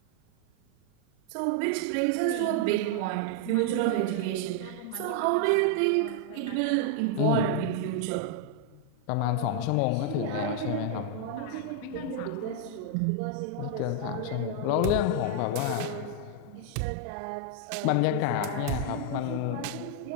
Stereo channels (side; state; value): both; different; correlation 0.00